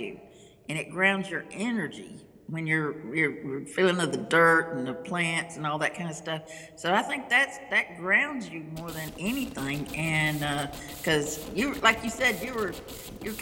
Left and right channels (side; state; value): both; identical; correlation 1.00